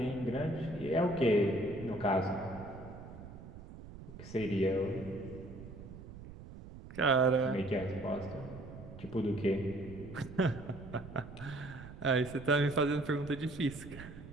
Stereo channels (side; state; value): right; noise; rumble, 14 dB below the sound